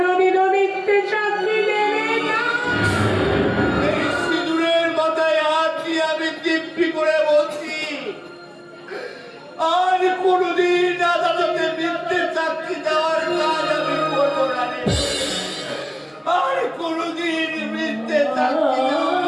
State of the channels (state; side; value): identical; both; correlation 1.00